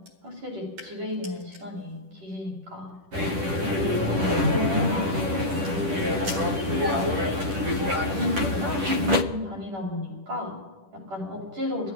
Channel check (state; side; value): late; left; 10 ms